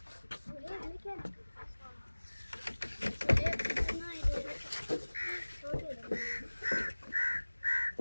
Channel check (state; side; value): inverted; both; correlation -1.00